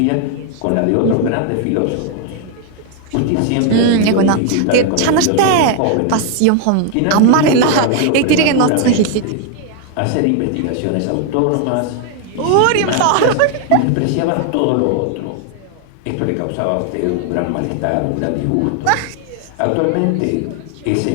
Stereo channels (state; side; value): different; both; correlation 0.00